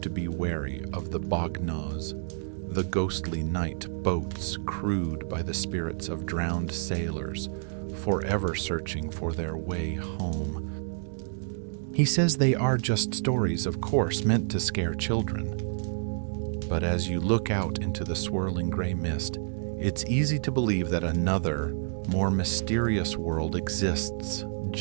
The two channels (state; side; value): silent; left; digital silence